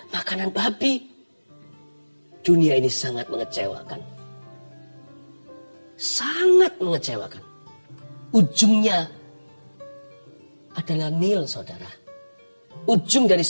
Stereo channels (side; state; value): both; inverted; correlation -1.00